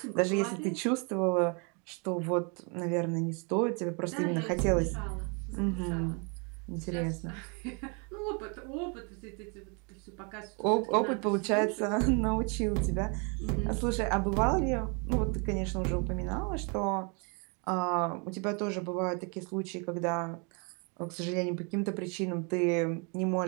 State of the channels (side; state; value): left; quieter; 34.7 dB